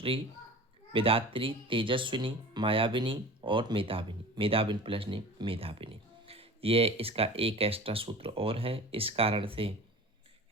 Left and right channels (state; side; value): normal; both; correlation 0.37